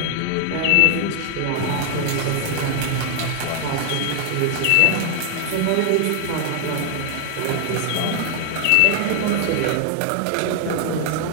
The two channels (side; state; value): both; different; correlation 0.00